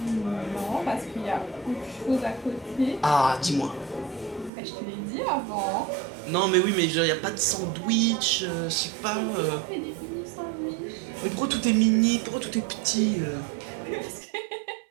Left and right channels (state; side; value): drops out; left; at 4.5 s